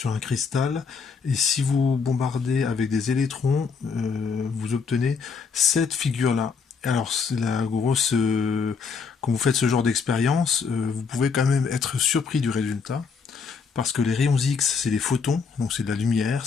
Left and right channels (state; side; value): quieter; right; 5.4 dB